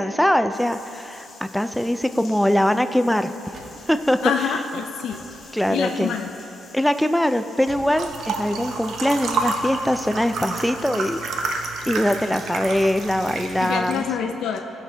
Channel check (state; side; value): normal; both; correlation 0.91